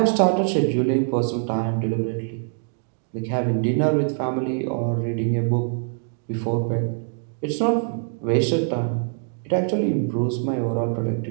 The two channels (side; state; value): left; silent; digital silence